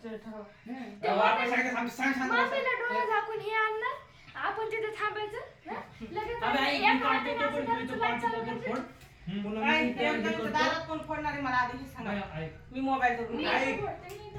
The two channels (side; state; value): both; identical; correlation 1.00